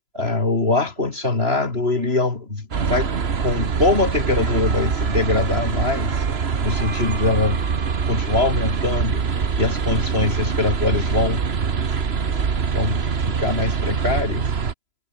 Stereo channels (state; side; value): late; left; 3.0 ms